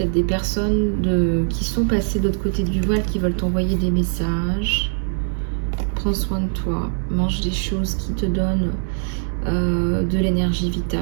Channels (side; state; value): left; silent; digital silence